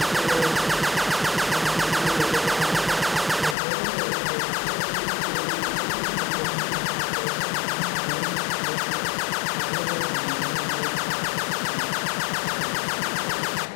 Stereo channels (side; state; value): right; drops out; at 3.6 s